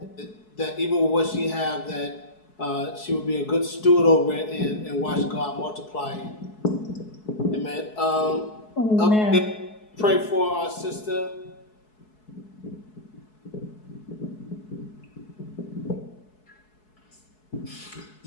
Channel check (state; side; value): late; right; 4.7 ms